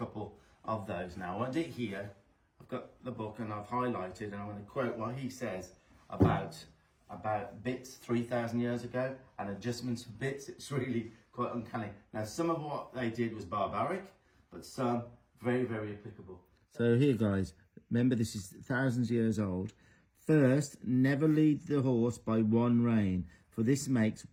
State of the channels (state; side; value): identical; both; correlation 1.00